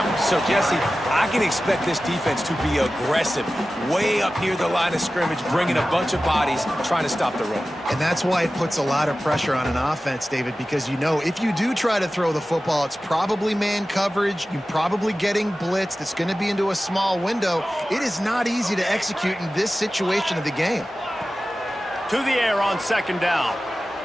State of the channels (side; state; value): both; normal; correlation 0.95